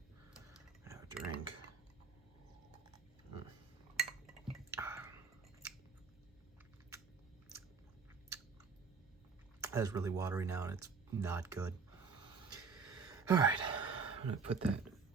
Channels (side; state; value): left; quieter; 5.2 dB